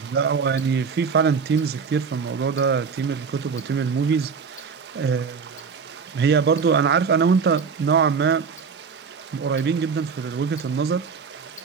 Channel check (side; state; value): left; quieter; 5.7 dB